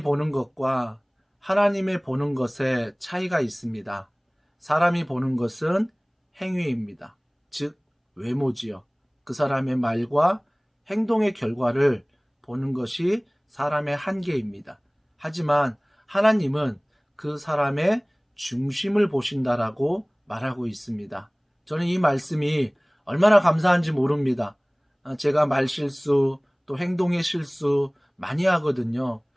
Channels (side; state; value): both; identical; correlation 1.00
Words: 보는 것과 하나님의 보는 것에 차이가 있습니다. 사람이 보는 것은 행위입니다. 즉 외모지요. 그 사람의 말과 행동의 결과를 보는 것이 사람의 한계입니다. 하지만 하나님은 그 사람의 중심을 보신다라고 말하고 있습니다. 저는 이 말씀이 얼마나 감사한지 모릅니다. 제가 말실수 또 행동의 실수 많이 하거든요.